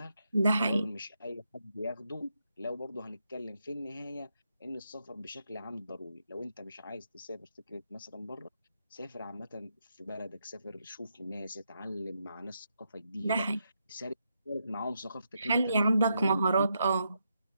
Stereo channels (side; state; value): both; inverted; correlation -0.82